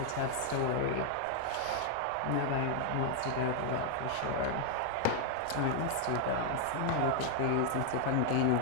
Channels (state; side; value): different; both; correlation 0.00